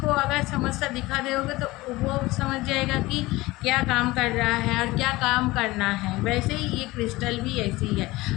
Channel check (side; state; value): right; quieter; 20.0 dB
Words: अगर समस्या दिखा दोगे तो वो समझ जाएगा कि क्या काम कर रहा है और क्या काम करना है। वैसे ही ये क्रिस्टल भी ऐसी ही है,